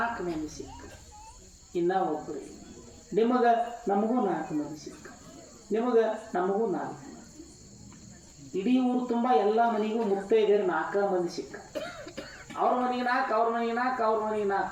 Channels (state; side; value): identical; both; correlation 1.00